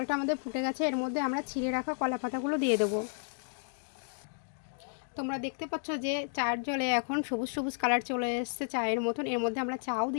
আমাদের ফুটে গেছে। এর মধ্যে আমরা ছিঁড়ে রাখা কলা পাতাগুলো দিয়ে দেবো। তোমরা দেখতে পাচ্ছ যে চার জলে এখন সবুজ সবুজ কালার চলে এসছে চায়ের মতন। এর মধ্যে আমরা চাও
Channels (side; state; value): right; silent; digital silence